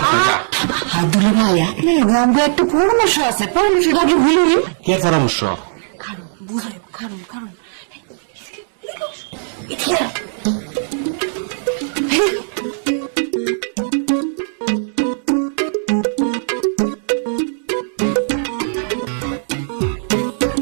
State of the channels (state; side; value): silent; left; digital silence